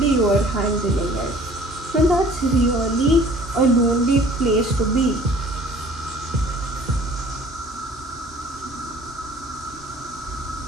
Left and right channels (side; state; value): both; normal; correlation 0.51